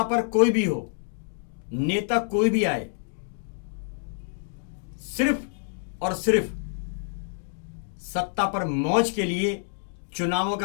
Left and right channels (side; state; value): right; silent; digital silence